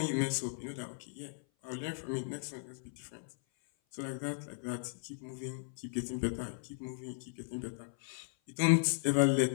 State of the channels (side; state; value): right; silent; 54 dB below the other